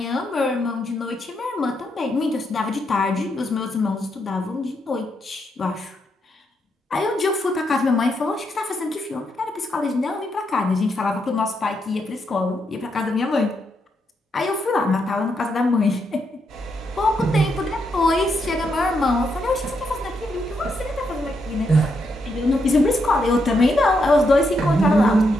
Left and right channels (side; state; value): both; normal; correlation 0.80